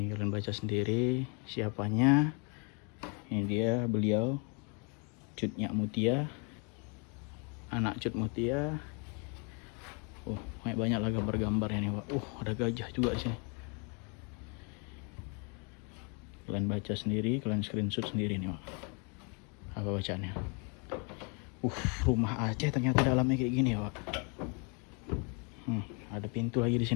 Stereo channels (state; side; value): quieter; right; 35.0 dB